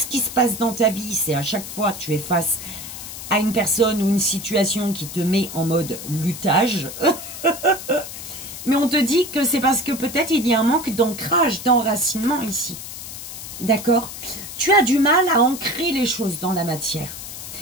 qui se passe dans ta vie, c'est à chaque fois tu es face à une personne ou une situation qui te met en mode luttage. Mais on te dit que c'est parce que peut-être il y a un manque d'ancrage, d'enracinement ici. D'accord? Tu as du mal à ancrer les choses dans la matière.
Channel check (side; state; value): left; noise; hiss, 10 dB below the sound